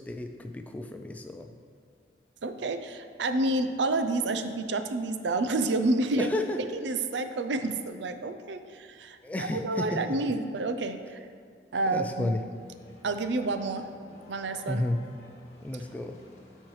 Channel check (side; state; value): both; normal; correlation 0.30